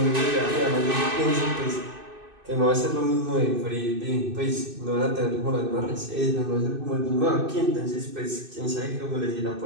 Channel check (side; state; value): left; late; 2.6 ms